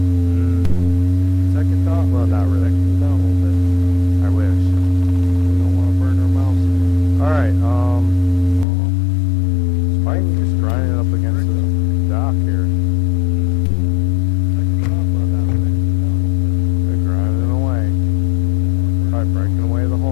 Second thought, well, not really. Cool down a little bit. I wish. We don't want to burn our mouths again. All right. It's fine. Just grinding it up against the dock here. They're grinding away. Probably breaking away the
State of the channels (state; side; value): drops out; right; at 8.7 s